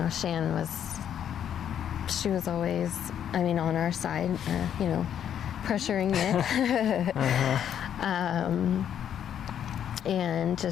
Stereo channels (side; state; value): right; quieter; 9.4 dB